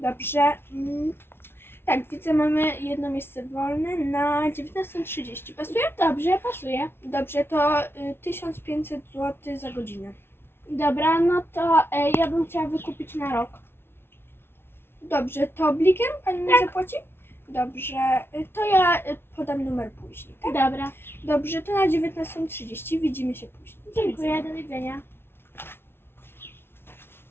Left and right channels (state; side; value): late; right; 0.11 ms